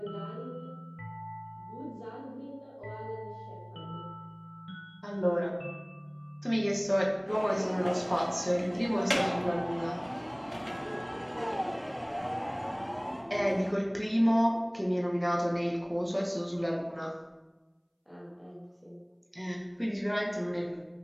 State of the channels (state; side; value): identical; both; correlation 1.00